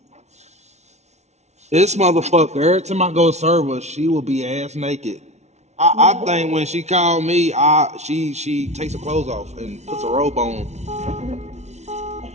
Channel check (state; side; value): late; left; 0.32 ms